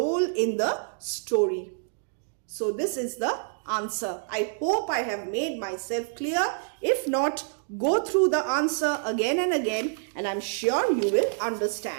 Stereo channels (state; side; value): silent; left; digital silence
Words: in the story. So this is the answer. I hope I have made myself clear. If not, go through the answer again and again, and I'm sure you will